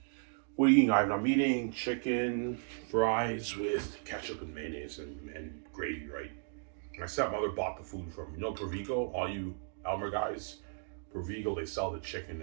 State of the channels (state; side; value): silent; left; digital silence